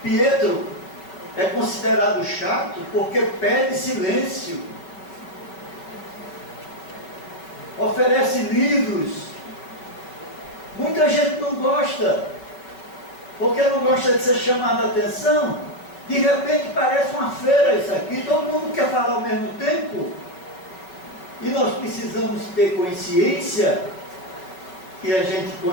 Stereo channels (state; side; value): late; right; 5.5 ms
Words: Pietro é considerado chato porque pede silêncio. Oferece livros. Muita gente não gosta, porque não gosta de ser chamada a atenção. De repente parece uma feira isso aqui, todo mundo quer falar ao mesmo tempo. E nós precisamos ter consciência que a gente,